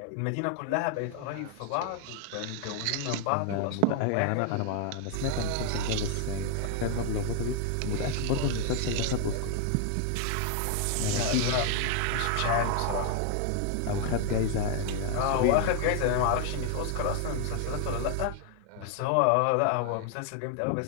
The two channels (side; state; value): both; different; correlation 0.00